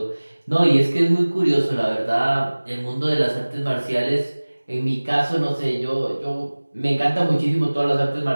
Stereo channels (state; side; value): inverted; both; correlation -1.00